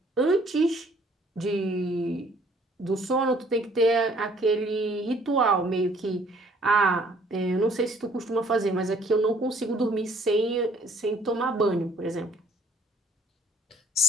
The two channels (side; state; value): both; normal; correlation 0.60